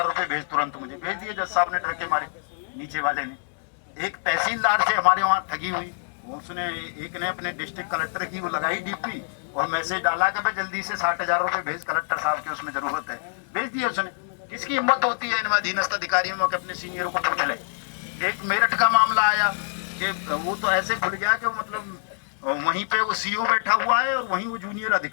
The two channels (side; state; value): right; silent; digital silence